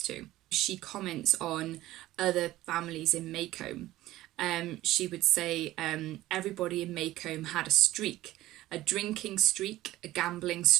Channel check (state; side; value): quieter; left; 15.9 dB